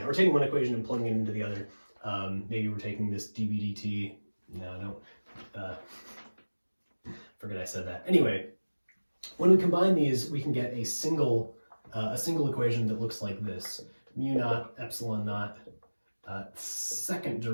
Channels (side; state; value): both; inverted; correlation -1.00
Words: We're taking one equation and plugging it into the other. Maybe we're taking this dB dt. No, don't. Forget I said that. Anyway, when we combine these, we can get a single equation that looks like this: mu naught epsilon naught second